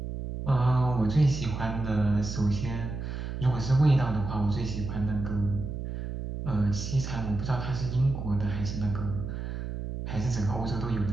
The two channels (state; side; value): noise; right; hum, 6 dB below the sound